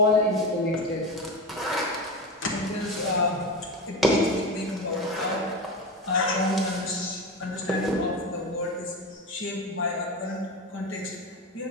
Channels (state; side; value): normal; both; correlation 0.22